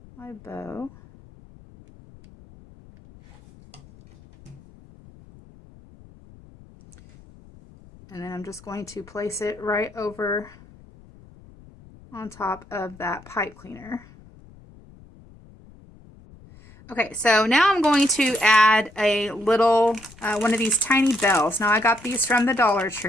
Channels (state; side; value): noise; left; rumble, 23 dB below the sound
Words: my bow. And then I'm just going to place it right over on top of that pipe cleaner. Okay, so now I'm going to add a little, one of these tiny bells. Now I got these from the Dollar